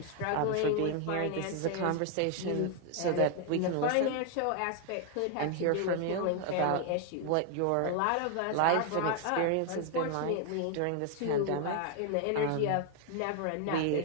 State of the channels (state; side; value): different; both; correlation 0.00